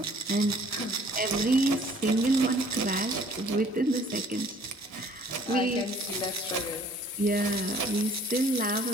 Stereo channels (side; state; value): both; normal; correlation 0.56